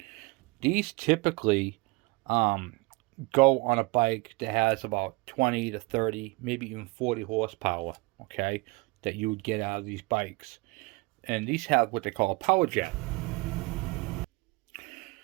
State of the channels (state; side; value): quieter; left; 25.6 dB